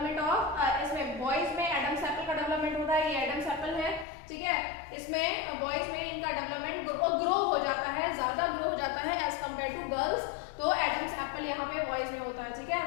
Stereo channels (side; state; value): right; drops out; at 4.0 s